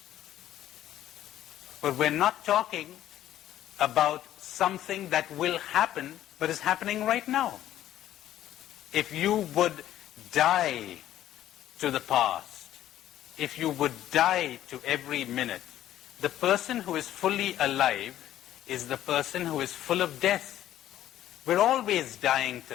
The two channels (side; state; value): right; quieter; 12.5 dB